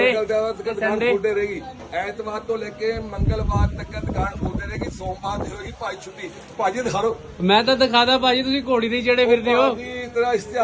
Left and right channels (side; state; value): both; identical; correlation 1.00